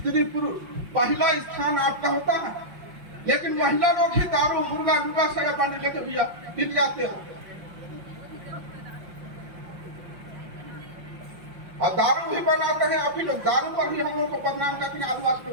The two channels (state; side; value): late; left; 5.6 ms